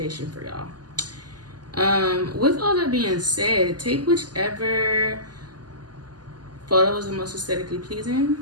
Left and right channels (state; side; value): late; left; 0.70 ms